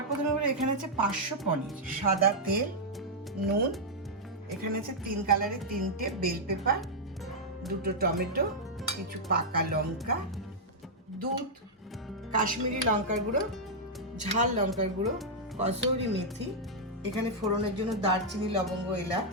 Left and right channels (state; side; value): normal; both; correlation -0.05